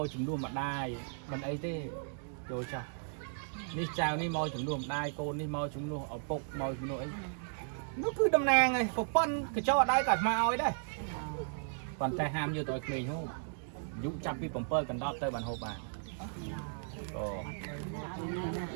កជំនួសម្ដាយមិនអីទេចូលចាស់នេះចៅនេះមកជំនួសម្ដាយកូននេះមកជំនួសឪពុកមកជំនួសអីនោះគឺតំណាងឯងប្រពន្ធកញ្ចក់អត់ដៃក៏អាត្មាឲ្យដែរប៉ុន្តែហាមយកទៅឲ្យក្មេងហូបយុចាប់ពី7កណ្ដប់ទៅបានហូបបានអូ ខ្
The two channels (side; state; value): left; silent; digital silence